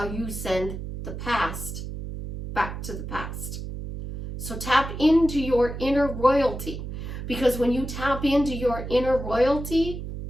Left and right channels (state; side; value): noise; right; hum, 7 dB below the sound